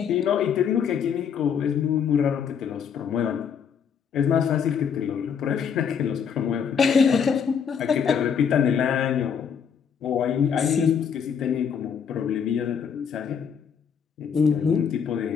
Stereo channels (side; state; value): right; quieter; 7.2 dB